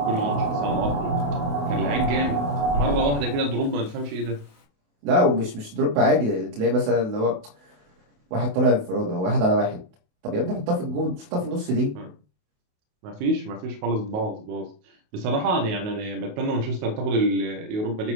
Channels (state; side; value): late; left; 28 ms